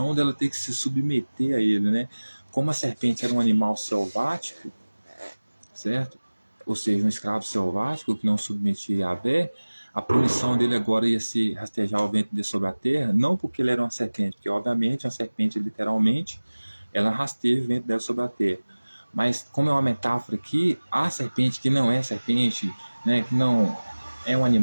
dela ter que se submeter a ele, né? Como a serpente era um animal selvático, certo? Ou seja, um escravo selvático que não submetia a Yahvé, a punição dele agora ia ser rastejar o ventre dele sobre a terra, não porque ele era uma serpente, porque obviamente uma serpente literalmente, ela rasteja o ventre dela sobre a terra. Mas como é uma metáfora aqui, a serpente que não é serpente, né, que não é um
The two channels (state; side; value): inverted; both; correlation -1.00